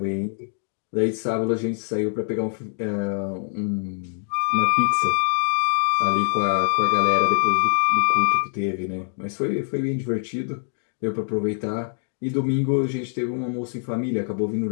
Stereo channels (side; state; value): right; silent; 63 dB below the other